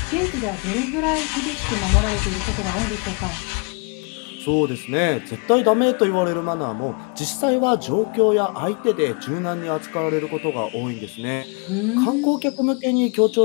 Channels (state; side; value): quieter; right; 34.7 dB